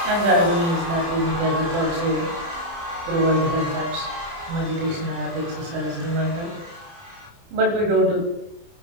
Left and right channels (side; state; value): left; late; 30 ms